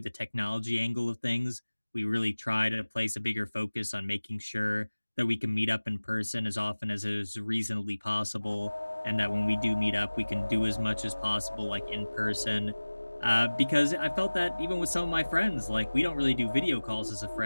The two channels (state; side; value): inverted; both; correlation -1.00